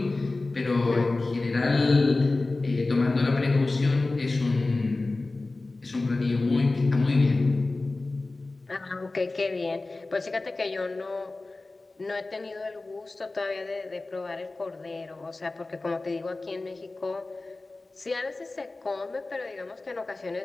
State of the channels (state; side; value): quieter; right; 3.2 dB